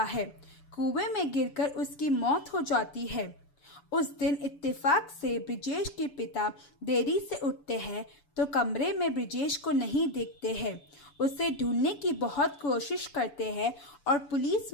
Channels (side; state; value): right; late; 7.0 ms